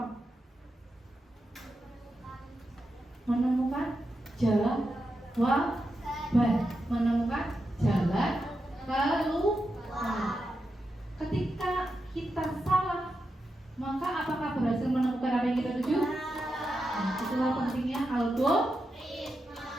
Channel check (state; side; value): normal; both; correlation 0.87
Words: Menemukan jawaban, menemukan jalan keluar. Ketika kita salah, maka apakah berhasil menemukan apa yang kita tuju? Nah, itulah pentingnya algoritma.